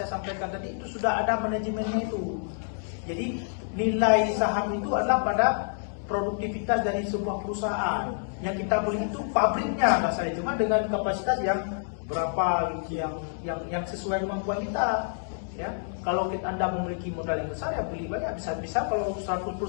sampaikan tadi, itu sudah ada manajemennya itu. Jadi nilai saham itu adalah pada produktivitas dari sebuah perusahaan. Yang kita beli itu pabriknya, nggak salah, cuma dengan kapasitas yang berapa yang sesuai kemampuan kita. Ya, kalau Anda memiliki modal yang besar ya beli banyak, bisa kalau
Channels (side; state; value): right; silent; digital silence